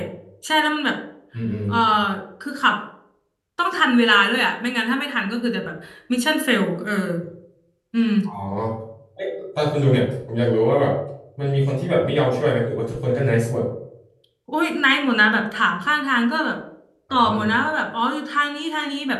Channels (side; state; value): both; identical; correlation 1.00